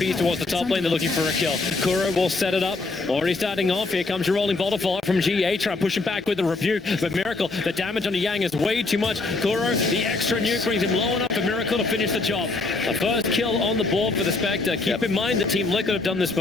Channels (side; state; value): right; quieter; 3.5 dB